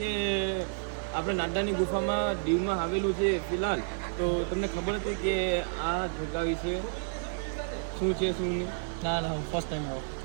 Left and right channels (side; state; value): left; silent; 57 dB below the other